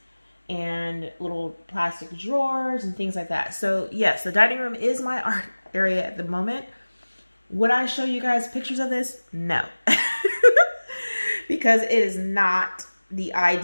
and little plastic drawers and things like that. So yes, the dining room is my art area at the moment. Would I show you guys pictures of this? No. Because it is not the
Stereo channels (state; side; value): inverted; both; correlation -1.00